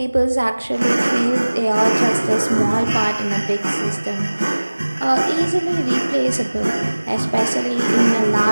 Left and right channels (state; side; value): inverted; both; correlation -1.00